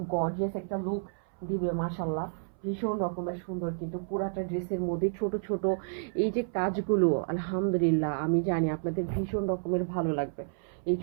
গর্জিয়াস একটা লুক দিবে, মাশাল্লাহ। ভীষণ রকমের সুন্দর, কিন্তু পুরাটা ড্রেসের মধ্যে ছোট ছোট এই যে কাজগুলো, আলহামদুলিল্লাহ আমি জানি আপনাদের ভীষণ রকমের ভালো লাগবে। এই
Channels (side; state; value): left; silent; 57 dB below the other